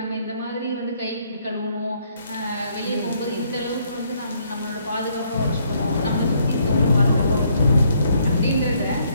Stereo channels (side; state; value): both; inverted; correlation -0.69